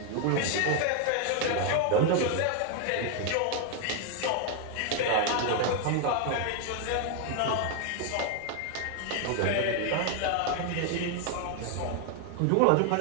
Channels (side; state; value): both; different; correlation 0.01